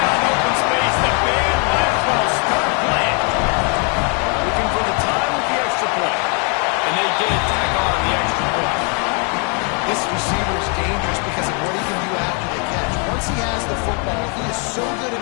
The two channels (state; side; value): quieter; right; 36.9 dB